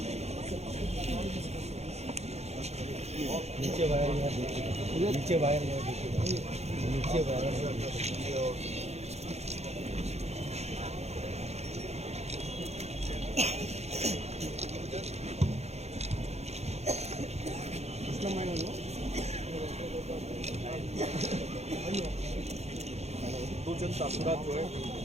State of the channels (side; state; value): left; late; 0.31 ms